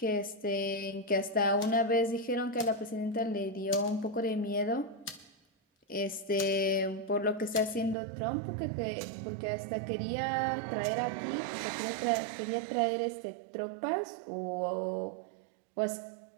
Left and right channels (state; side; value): drops out; left; at 8.0 s